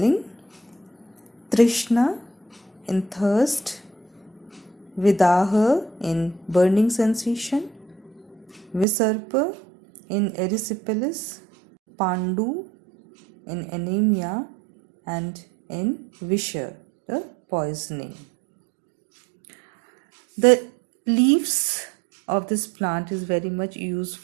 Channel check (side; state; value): left; drops out; at 8.8 s